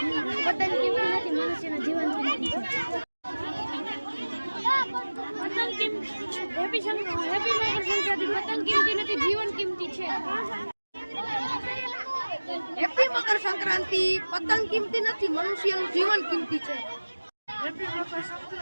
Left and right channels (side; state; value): both; inverted; correlation -1.00